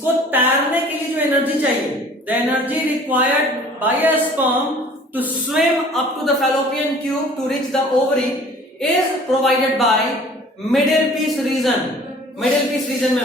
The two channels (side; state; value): both; normal; correlation 0.49